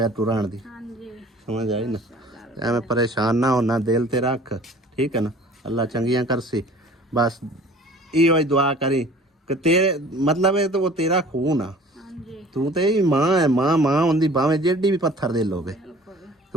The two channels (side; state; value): both; normal; correlation 0.48